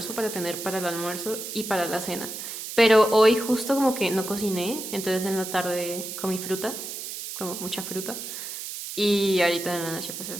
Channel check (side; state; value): right; noise; hiss, 8 dB below the sound